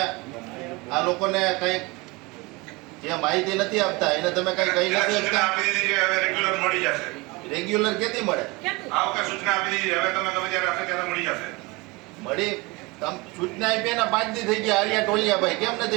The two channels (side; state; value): left; quieter; 24.8 dB